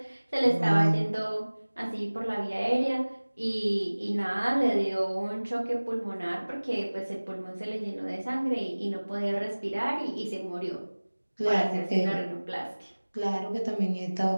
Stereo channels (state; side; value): inverted; both; correlation -1.00